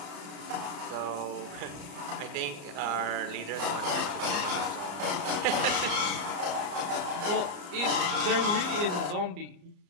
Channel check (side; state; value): left; late; 34 ms